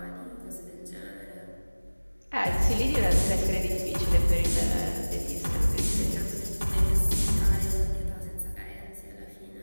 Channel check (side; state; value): both; inverted; correlation -1.00